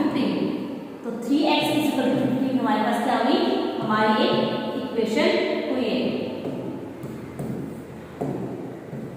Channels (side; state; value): both; identical; correlation 1.00